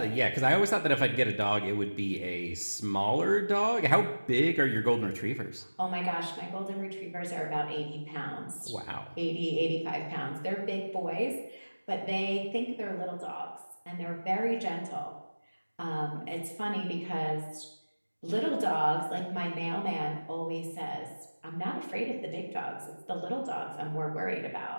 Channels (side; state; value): both; inverted; correlation -1.00